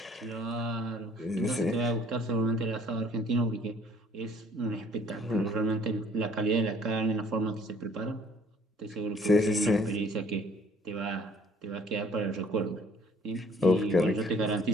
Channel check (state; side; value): normal; both; correlation 0.58